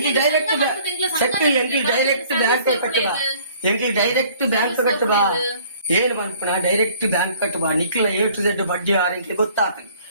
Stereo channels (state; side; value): inverted; both; correlation -0.55